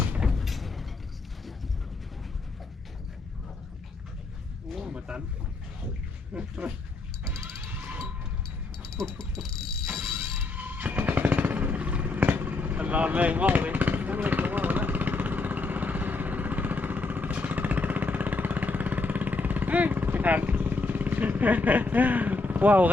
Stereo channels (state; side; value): quieter; right; 3.6 dB